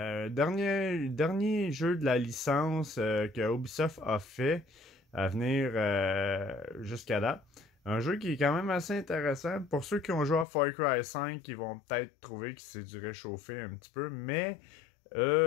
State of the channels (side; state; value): right; drops out; at 10.5 s